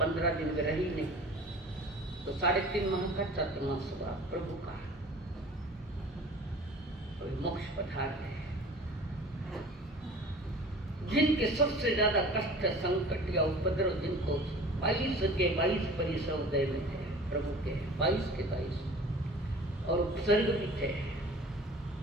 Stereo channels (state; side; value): normal; both; correlation 0.43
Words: दिन में रही नहीं, तो 3.5 माह का चतुर्मास हुआ प्रभु का। मोक्ष पधार है। जिनके सबसे ज्यादा कष्ट, संकट या उपद्रव जिनको 22 के 22 परिसर उदय में थे प्रभु के, 22 के 22 और उपसर्ग भी थे,